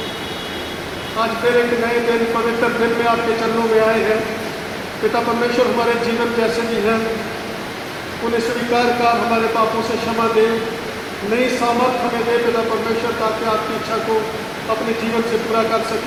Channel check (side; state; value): both; identical; correlation 1.00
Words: आज फिर एक नए दिन, पवित्र दिन में आपके चरणों में आए हैं। पिता परमेश्वर, हमारे जीवन जैसे भी हैं उन्हें स्वीकार कर हमारे पापों से क्षमा दे, नई सामर्थ हमें दे पिता परमेश्वर, ताकि आपकी इच्छा को अपने जीवन से पूरा कर